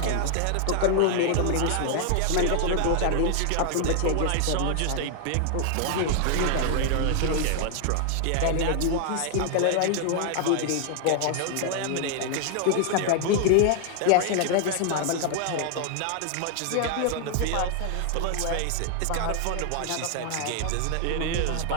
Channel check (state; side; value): different; both; correlation 0.00